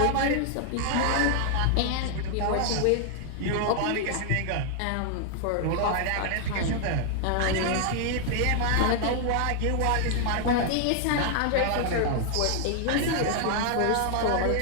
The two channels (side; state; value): both; different; correlation 0.00